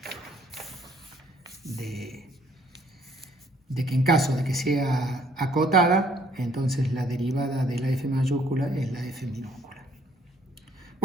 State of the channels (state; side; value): normal; both; correlation 0.63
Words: de que en caso de que sea acotada, entonces la derivada de la f mayúscula es la f minúscula.